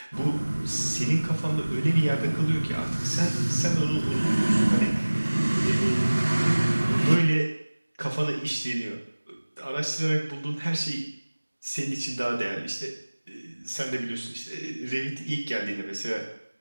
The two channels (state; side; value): inverted; both; correlation -1.00